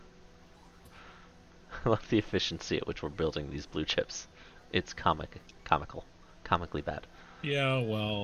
I love the efficiency at which we're building these blue chips. It's comically bad. Yeah,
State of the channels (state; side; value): identical; both; correlation 1.00